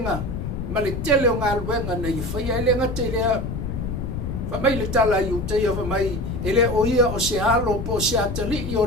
ma le tele o ngā luenga na I whaia, e le ngata I lea, whamai le tala I uteia whamai, e le o ia o se halo po se atali I o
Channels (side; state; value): left; noise; rumble, 5 dB below the sound